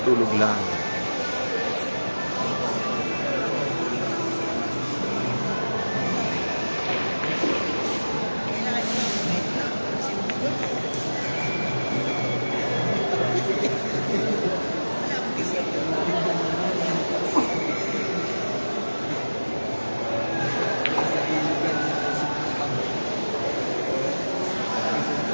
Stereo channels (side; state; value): both; inverted; correlation -1.00